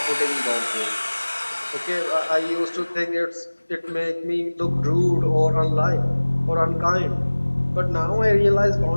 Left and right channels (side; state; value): both; inverted; correlation -1.00